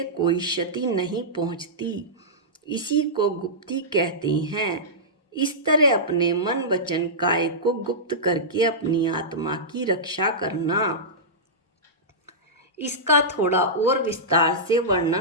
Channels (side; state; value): both; normal; correlation -0.14